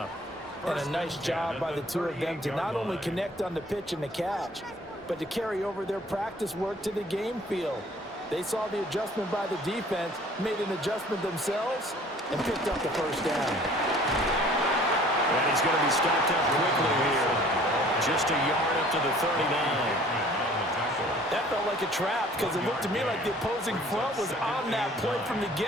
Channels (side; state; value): both; normal; correlation 0.53